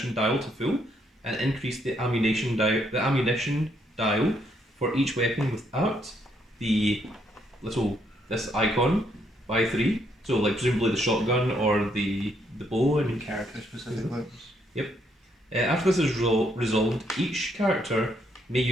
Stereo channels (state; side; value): normal; both; correlation 0.73